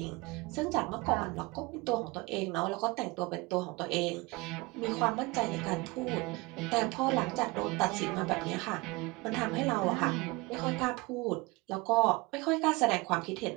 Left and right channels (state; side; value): quieter; left; 24.4 dB